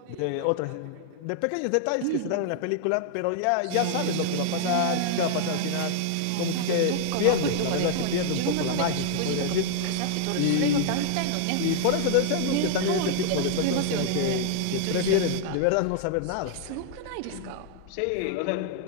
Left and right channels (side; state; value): both; different; correlation -0.01